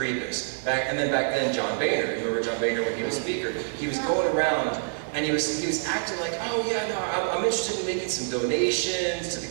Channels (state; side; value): silent; left; digital silence